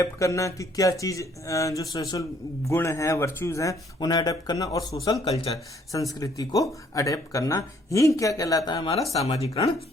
करना कि क्या चीज जो सोशल गुण है, वर्च्यूज हैं, उन्हें अडेप्ट करना। और सोशल कल्चर, संस्कृति को अडेप्ट करना ही क्या कहलाता है, हमारा सामाजिकरण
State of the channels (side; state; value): both; normal; correlation 0.64